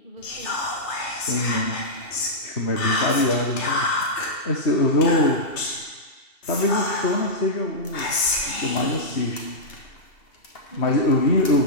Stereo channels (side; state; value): right; late; 2.7 ms